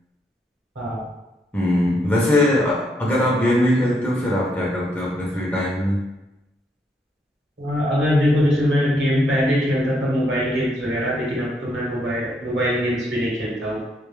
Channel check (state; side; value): normal; both; correlation 0.75